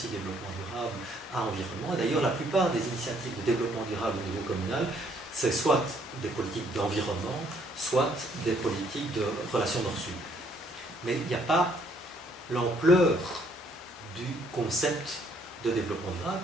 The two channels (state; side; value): normal; both; correlation 0.66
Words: développement durable à environnement. Et d'ailleurs, la plupart des initiatives de développement durable au niveau communal, c'est soit des politiques d'environnement, soit des politiques de relations nord-sud. Mais il n'y a pas l'ampleur du concept de développement durable